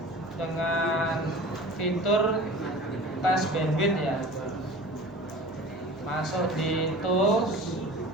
dengan fitur tes bandwidth ya. Masuk di tools,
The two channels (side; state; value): left; noise; hum, 26 dB below the sound